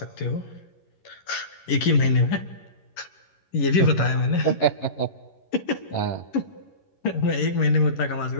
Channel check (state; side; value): late; right; 11 ms